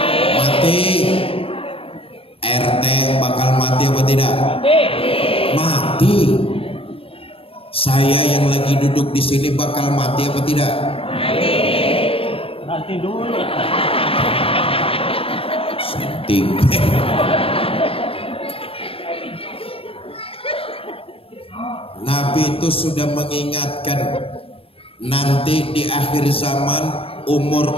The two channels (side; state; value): right; late; 0.27 ms